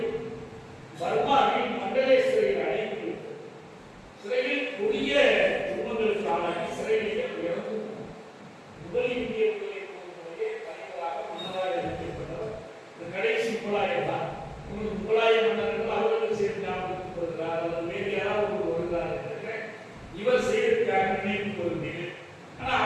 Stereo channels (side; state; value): both; identical; correlation 1.00